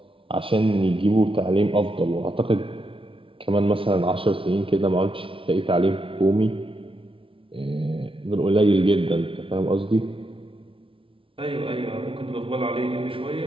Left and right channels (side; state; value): left; late; 0.26 ms